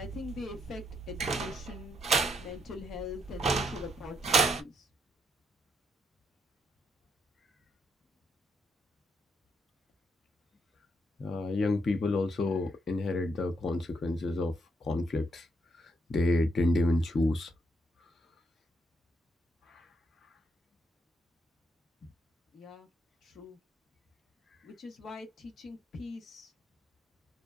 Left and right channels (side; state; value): both; normal; correlation 0.76